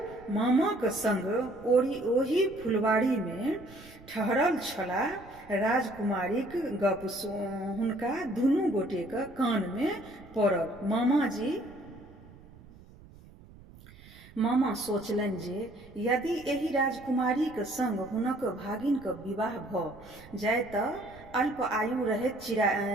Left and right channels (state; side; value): noise; right; rumble, 21 dB below the sound